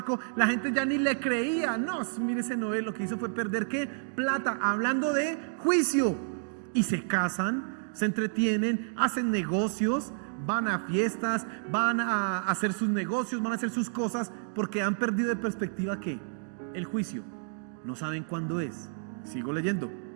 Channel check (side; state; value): left; silent; digital silence